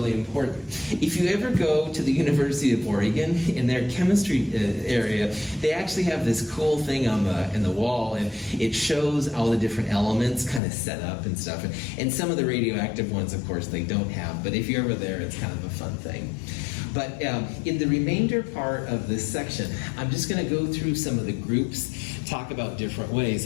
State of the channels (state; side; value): drops out; right; at 10.6 s